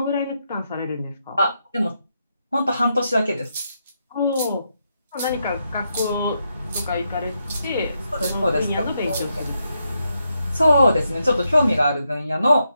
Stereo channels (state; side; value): inverted; both; correlation -0.82